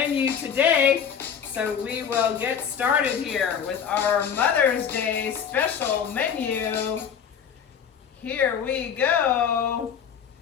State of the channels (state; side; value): quieter; right; 7.7 dB